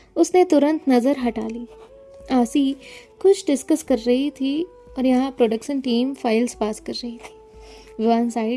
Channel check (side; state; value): both; identical; correlation 1.00